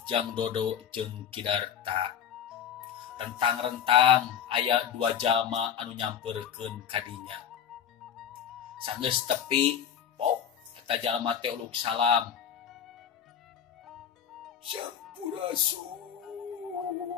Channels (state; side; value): quieter; right; 8.8 dB